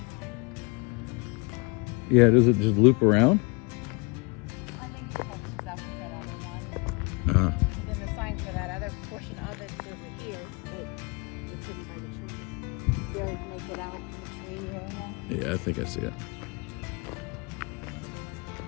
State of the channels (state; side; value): quieter; right; 29.6 dB